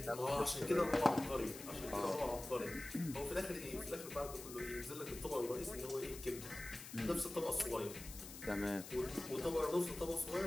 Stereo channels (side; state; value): left; noise; hiss, 12 dB below the sound